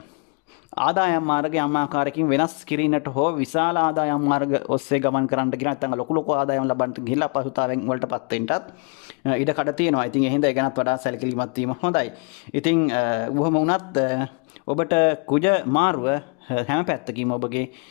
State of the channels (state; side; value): quieter; right; 35.1 dB